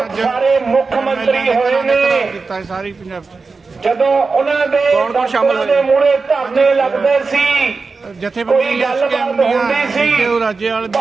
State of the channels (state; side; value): quieter; left; 4.3 dB